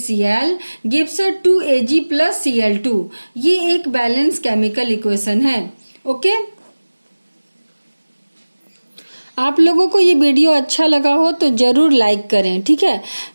गिव्स 2Ag + Cl2, ये एक बैलेंस केमिकल इक्वेशन है। ओके, आप लोगों को ये वीडियो अच्छा लगा हो तो जरूर लाइक करें, ठीक है,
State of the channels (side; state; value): both; inverted; correlation -1.00